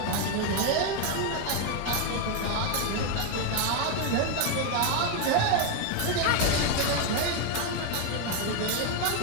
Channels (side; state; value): both; different; correlation 0.01